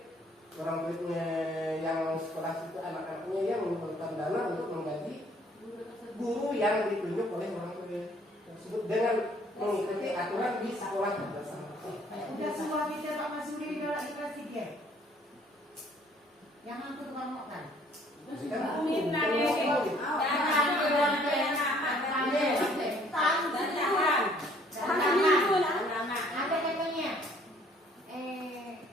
orang muridnya yang sekolah itu anak-anaknya yang mengumpulkan dana untuk menggaji guru yang ditunjuk oleh orang tua tersebut dengan mengikuti aturan di sekolah bersama. Udah semua kita Pak Masudi nolak di kelas 3. Yang aku tukang makan. Minta deh, Ada katanya.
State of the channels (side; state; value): both; normal; correlation 0.60